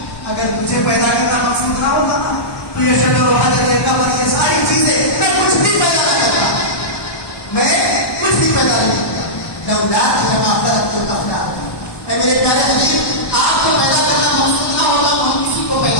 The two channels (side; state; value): right; late; 1.1 ms